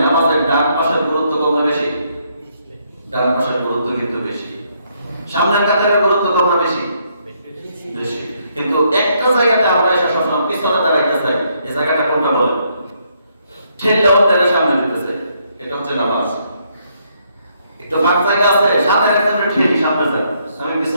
নামাজের ডান পাশের গুরুত্ব কম না বেশি? ডান পাশের গুরুত্ব কিন্তু বেশি। সামনের কাতারের গুরুত্ব কম না বেশি? বেশি। কিন্তু একটা জায়গাতে আমরা এসে সবসময় পিছনে দাঁড়াইতে চাই, এই জায়গাটা কোনটা বলেন? ঠেলটাও তারা সামনে দিতেছে, এটা হচ্ছে নামাজ। একটু ফাঁক জায়গা আছে, সাথে একজনের ঠেল সামনে যায়, আমি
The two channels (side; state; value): both; inverted; correlation -0.73